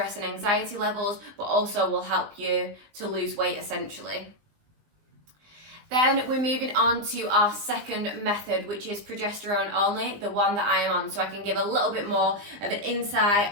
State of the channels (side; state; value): left; late; 20 ms